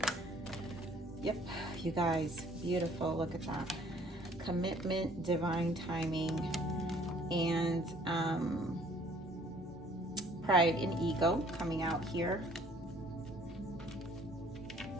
Yep, you guys, beautiful. Look at that. Commitment, divine timing, and pride and ego coming out here.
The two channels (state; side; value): normal; both; correlation 0.57